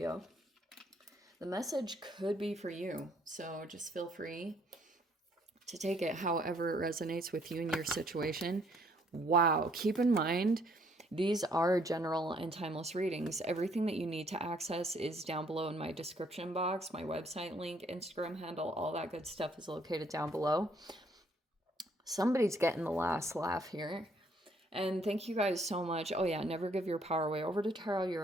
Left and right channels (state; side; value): normal; both; correlation 0.66